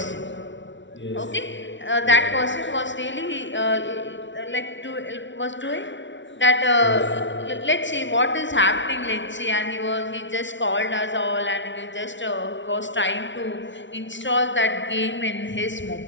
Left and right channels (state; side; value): late; right; 0.54 ms